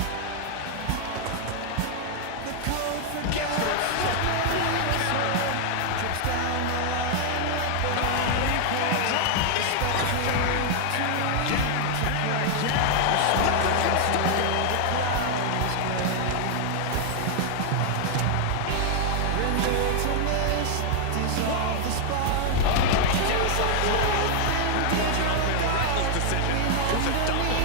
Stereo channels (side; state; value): both; different; correlation 0.00